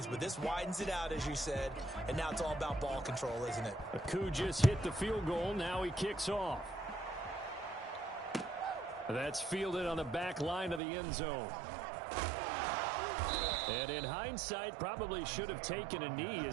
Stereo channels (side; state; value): left; drops out; at 10.8 s